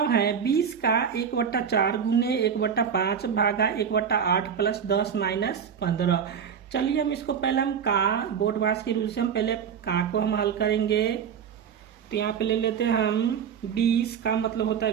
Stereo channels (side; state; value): left; quieter; 7.5 dB